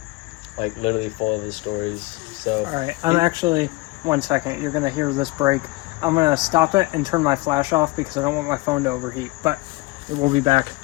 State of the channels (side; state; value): right; quieter; 22.1 dB